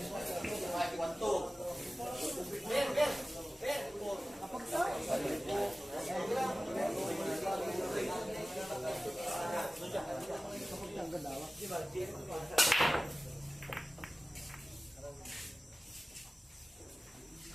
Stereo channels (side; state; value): both; normal; correlation 0.97